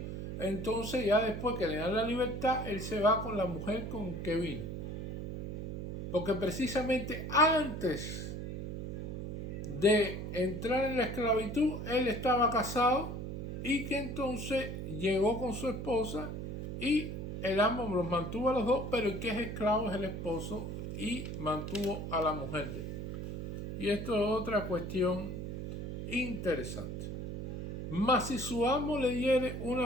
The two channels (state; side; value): noise; right; hum, 6 dB below the sound